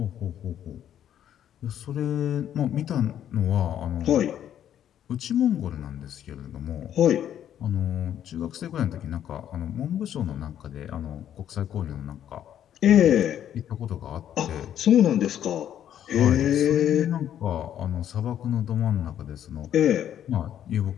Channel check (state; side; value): quieter; right; 10.3 dB